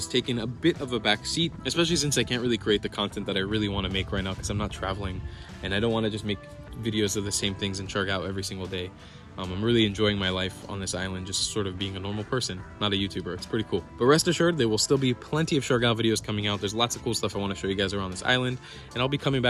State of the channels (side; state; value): both; identical; correlation 1.00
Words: taken a bit of a back seat, especially since I can't really create the content that I really want to make right now because I'm not traveling and I don't want to just make videos of the same things in Siargao every single day. I'm really enjoying my life on this island, just sort of being a normal person, not a YouTuber. It's pretty cool. But rest assured, there will still be plenty of Siargao videos coming out. There's lots of cool stuff I want to show you guys around this island, and I'll be coming